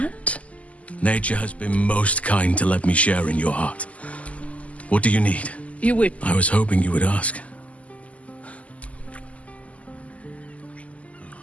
Nature has been most kind to let me share in your heart. What do you need? You would. I was hoping you would ask.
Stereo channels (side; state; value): right; late; 0.068 ms